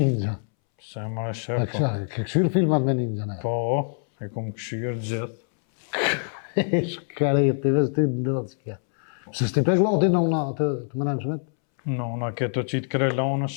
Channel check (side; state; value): right; silent; 62 dB below the other